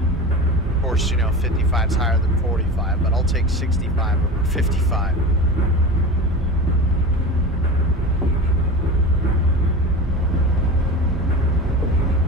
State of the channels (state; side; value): normal; both; correlation 0.30